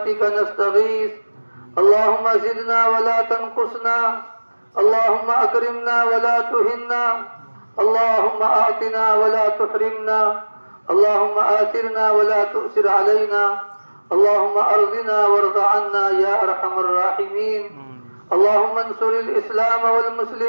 نستغيث. اللهم زدنا ولا تنقصنا، اللهم أكرمنا ولا تهنا، اللهم أعطنا ولا تحرمنا، اللهم آثرنا ولا تؤثر علينا، اللهم أرضنا وارض عنا يا أرحم الراحمين. اللهم انصر الإسلام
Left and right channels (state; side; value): inverted; both; correlation -1.00